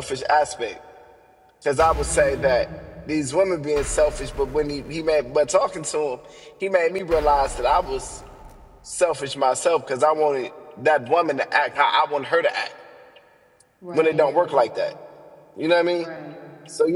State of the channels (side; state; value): both; identical; correlation 1.00